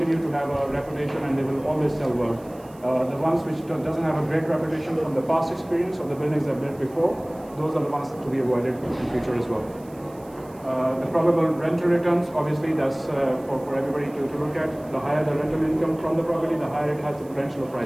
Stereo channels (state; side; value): noise; right; hiss, 27 dB below the sound